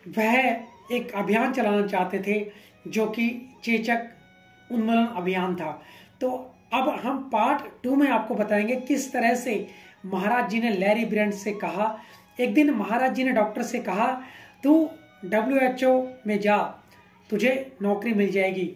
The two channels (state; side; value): identical; both; correlation 1.00